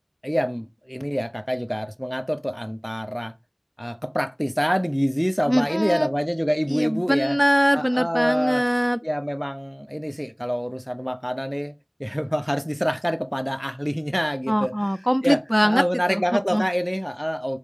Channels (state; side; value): identical; both; correlation 1.00